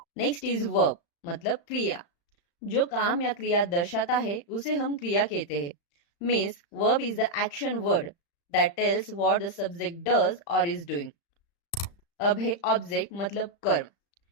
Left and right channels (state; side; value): late; right; 35 ms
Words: Next is verb मतलब क्रिया, जो काम या क्रिया दर्शाता है उसे हम क्रिया कहते हैं। Means verb is the action word that tells what the subject does और इज डूइंग। अब है ऑब्जेक्ट मतलब कर्म,